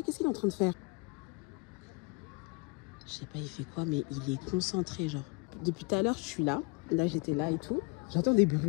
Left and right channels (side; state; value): right; quieter; 28.4 dB